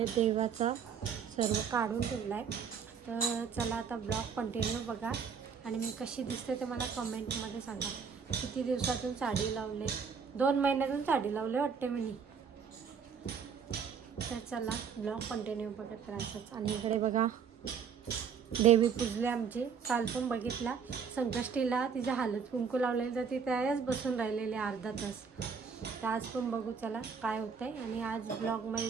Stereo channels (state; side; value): quieter; left; 6.5 dB